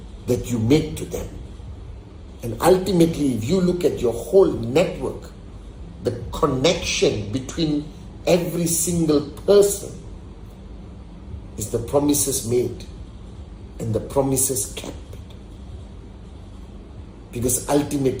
that you make to them. And ultimately, if you look at your whole network, the connection between every single person is the promises made and the promises kept. Because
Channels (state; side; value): identical; both; correlation 1.00